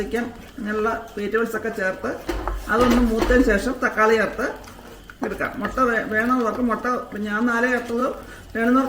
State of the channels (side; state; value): both; identical; correlation 1.00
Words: അങ്ങനെയുള്ള വെജിറ്റബിൾസ് ഒക്കെ ചേർത്ത് അതൊന്ന് മൂത്തതിന് ശേഷം തക്കാളി ചേർത്ത് എടുക്കാം. മുട്ട വേണമെന്നവർക്ക് മുട്ട, ഞാൻ 4 ചേർത്തത്,